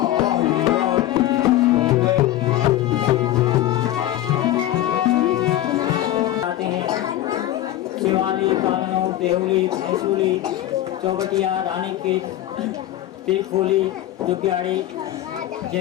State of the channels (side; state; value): right; quieter; 13.6 dB